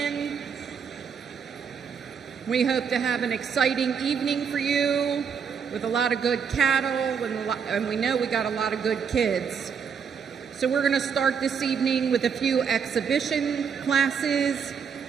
We hope to have an exciting evening for you with a lot of good cattle, and we know we got a lot of good kids. So we're going to start this evening with a few exhibition classes.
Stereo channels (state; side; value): quieter; left; 6.7 dB